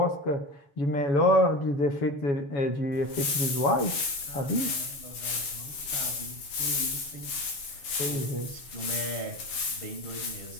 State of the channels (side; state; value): right; late; 7.3 ms